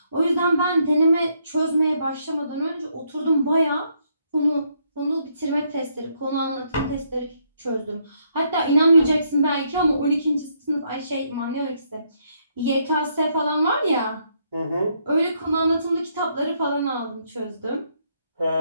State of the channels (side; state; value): both; inverted; correlation -0.73